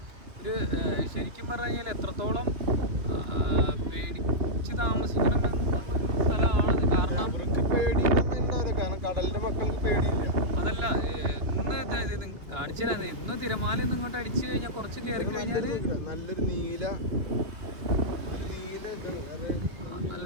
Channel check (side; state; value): left; late; 2.6 ms